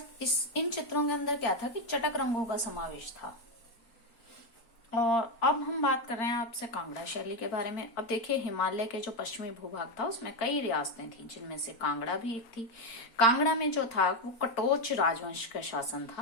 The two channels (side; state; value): right; late; 4.4 ms